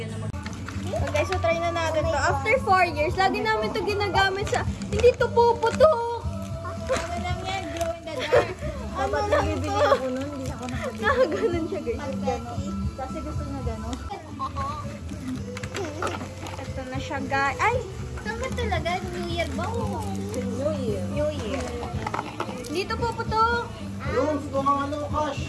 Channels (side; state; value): both; identical; correlation 1.00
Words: ng So guys, so try na natin to. After 4 years, lagi namin to ginagamit sa... Hindi to puputok! Ano lang yan? Glow in the dark. Dapat nabibili ako nun, hindi ako nakabili. Nakaganon siya guys. Kasi gusto niya gano'n. Ito na siya guys. Ay! Saan ba talaga? New Year ba? New Year. New Year. Dito puputok! Yung gusto ng ano,